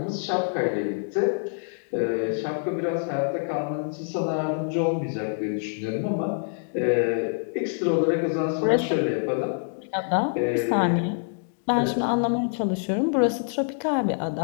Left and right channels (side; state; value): right; silent; 61 dB below the other